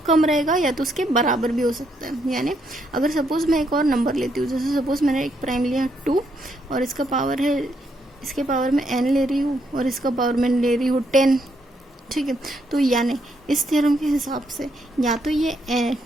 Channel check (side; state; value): both; normal; correlation 0.75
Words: रहेगा या तो उसके बराबर भी हो सकता है। यानी अगर सपोज मैं एक और नंबर लेती हूँ, जैसे सपोज मैंने एक प्राइम लिया 2 और इसका पावर है, इसके पावर में n ले रही हूँ और इसका पावर में ले रही हूँ 10, ठीक है। तो यानी इस थ्योरम के हिसाब से या तो ये